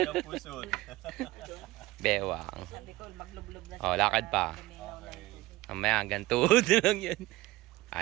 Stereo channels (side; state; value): left; quieter; 18.7 dB